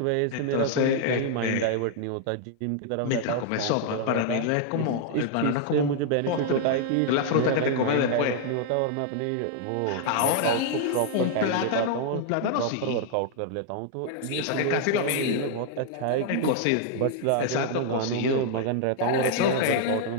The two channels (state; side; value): different; both; correlation 0.00